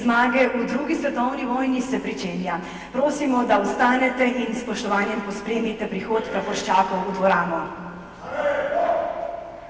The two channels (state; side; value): identical; both; correlation 1.00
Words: v drugi svetovni vojni se pričenja. Prosimo, da vstanete in s spoštovanjem pospremite prihod praporščakov v dvorano.